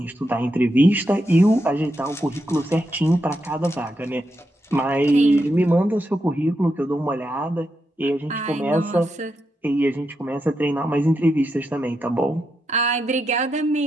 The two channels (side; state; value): both; normal; correlation 0.85